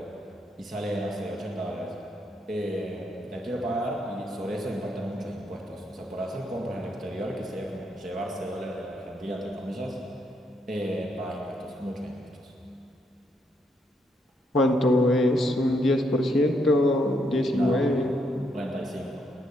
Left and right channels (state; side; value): normal; both; correlation 0.76